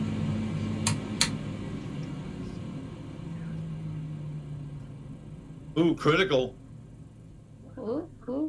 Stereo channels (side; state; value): both; identical; correlation 1.00